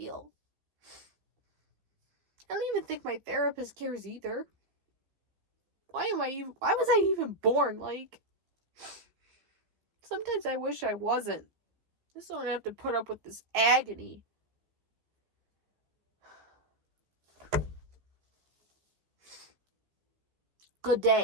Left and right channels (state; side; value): late; left; 15 ms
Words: I don't even think my therapist cares either. Why was I even born? Like, sometimes I wish I wasn't. I just don't have to put up with this agony. Good